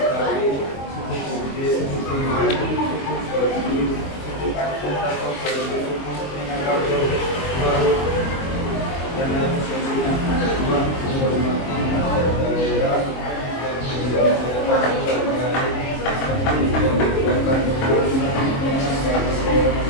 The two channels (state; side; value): late; right; 22 ms